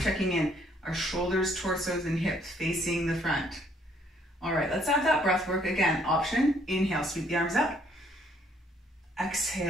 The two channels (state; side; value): normal; both; correlation 0.65